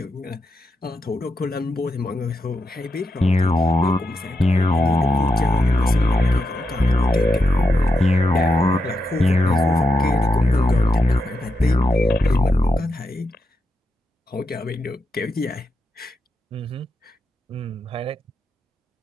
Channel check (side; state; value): both; normal; correlation 0.85